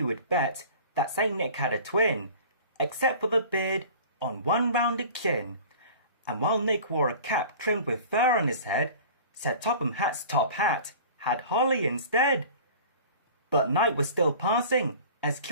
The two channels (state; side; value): inverted; both; correlation -0.42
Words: would bet that Saint Nick had a twin, except for the beard on one rounded chin. And while Nick wore a cap trimmed with fur on his head, Sir Topham Hatt's top hat had holly instead. But night was still passing, as